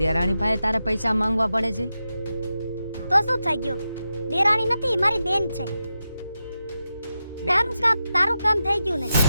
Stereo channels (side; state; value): both; inverted; correlation -0.89